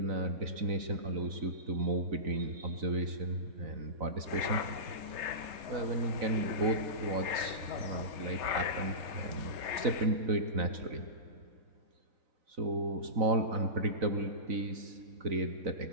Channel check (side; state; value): left; late; 3.9 ms